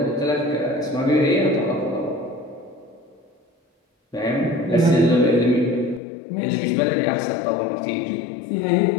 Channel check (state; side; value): drops out; right; at 6.0 s